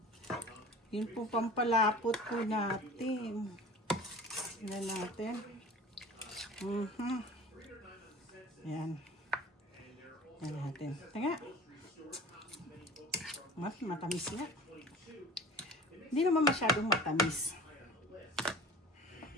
Yun po pampalapot po natin. Tignan natin. Yan. Yan natin. Tanga. Matamis nga. Hindi naman masyadong matamis.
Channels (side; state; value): both; normal; correlation 0.42